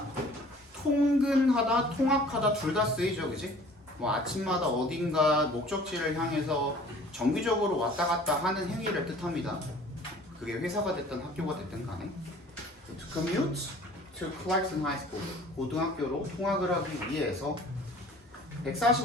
통근하다, 통학하다 둘 다 쓰이죠, 그지? 뭐 아침마다 어딘가 목적지를 향해서 정기적으로 왔다 갔다 하는 행위를 뜻합니다. 그게 회사가 됐든 학교가 됐든 간에. To commute to Clarkson High School. 고등학교로 통학을 하기 위해서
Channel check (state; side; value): normal; both; correlation 0.50